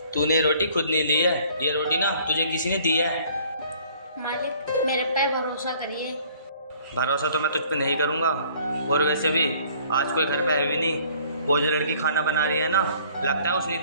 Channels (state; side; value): inverted; both; correlation -0.56